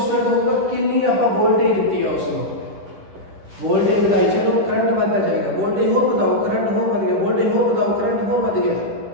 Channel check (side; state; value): left; late; 10 ms